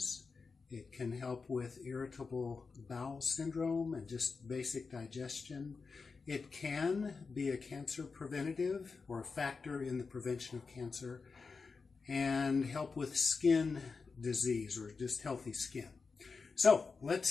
It can help with irritable bowel syndrome and just basic digestion. It can be a cancer preventative or a factor in the prevention of cancer and help with skin disease or just healthy skin. So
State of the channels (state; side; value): quieter; right; 4.7 dB